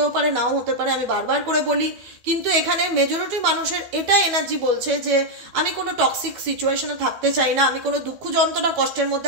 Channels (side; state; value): left; late; 12 ms